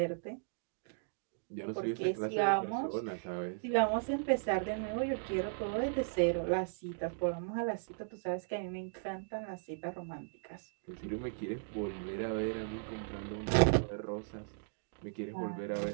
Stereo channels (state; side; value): silent; left; digital silence